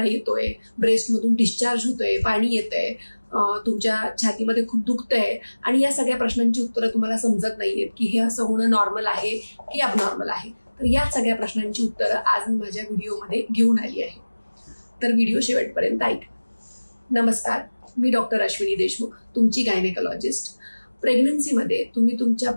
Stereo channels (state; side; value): inverted; both; correlation -1.00